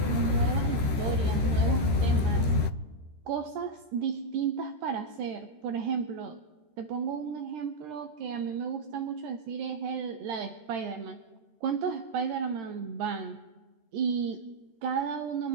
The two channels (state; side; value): late; left; 13 ms